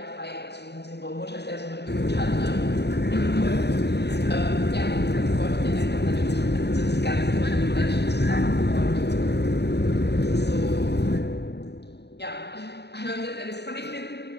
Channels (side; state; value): right; late; 0.49 ms